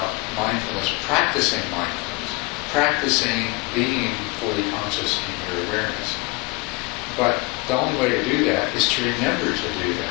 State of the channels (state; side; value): quieter; right; 26.4 dB